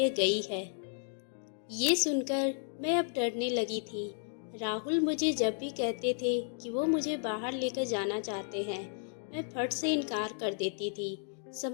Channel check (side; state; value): right; silent; 56 dB below the other